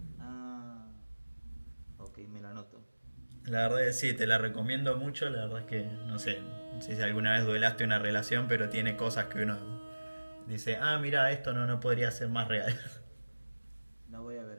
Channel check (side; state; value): both; inverted; correlation -1.00